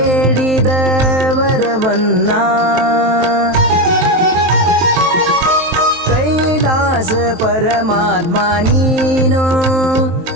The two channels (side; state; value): left; late; 23 ms